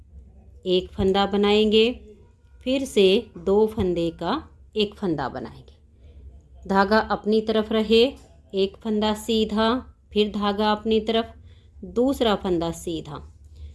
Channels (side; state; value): both; identical; correlation 1.00